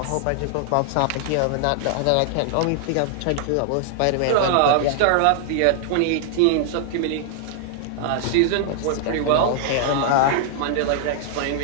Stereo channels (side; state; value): both; different; correlation -0.01